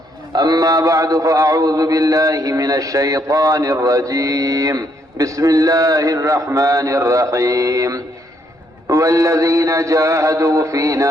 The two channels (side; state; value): both; normal; correlation 0.72